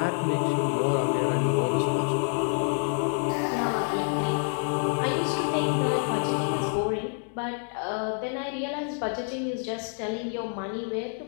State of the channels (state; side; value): silent; right; 60 dB below the other